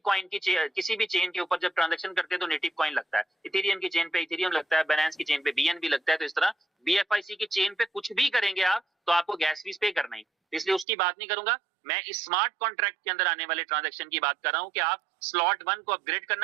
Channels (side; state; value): left; drops out; at 10.9 s